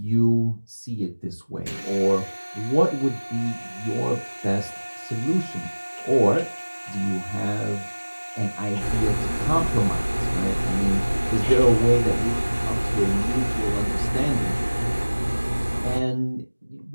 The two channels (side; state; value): both; inverted; correlation -1.00